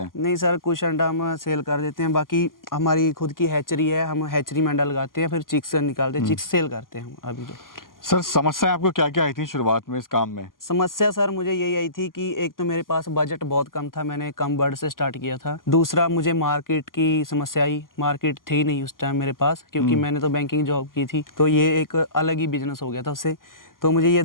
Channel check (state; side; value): late; right; 0.91 ms